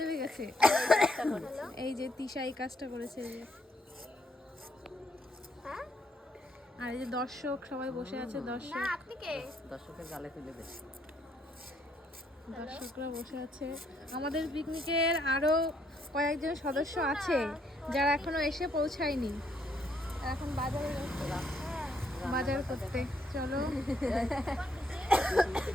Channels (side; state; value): both; normal; correlation 0.72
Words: গেছে। এই যে তিশা এই কাজটা করেছে যে। হ্যাঁ আর এই যে দর্শক সবাই বসে আছে, না দর্শক আপনি কে? দর্শকের গালে তুলে দে। দর্শকরা বসে আছে। আমাদের পিকনিকের আরো কয়েকজন সদস্য আছে যারা এখনো এসে পৌঁছায়নি, এখন বাজারে গেছে বাজার করতে। চলো